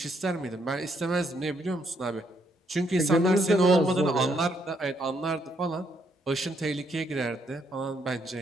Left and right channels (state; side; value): normal; both; correlation 0.73